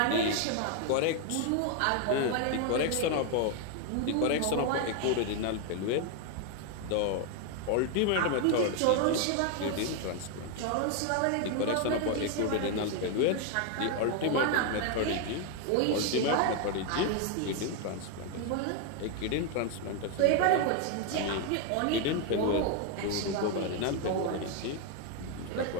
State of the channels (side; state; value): both; different; correlation 0.01